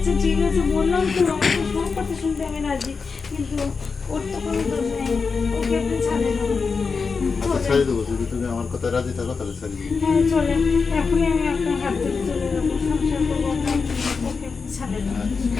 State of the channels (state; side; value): quieter; right; 5.0 dB